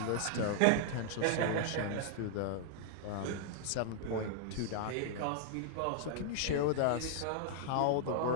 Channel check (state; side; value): different; both; correlation -0.01